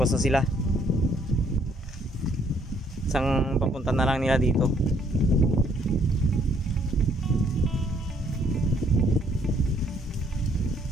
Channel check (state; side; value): normal; both; correlation 0.66